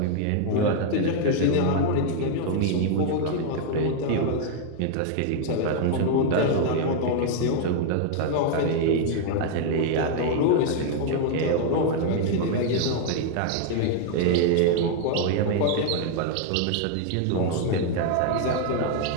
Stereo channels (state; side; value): different; both; correlation 0.00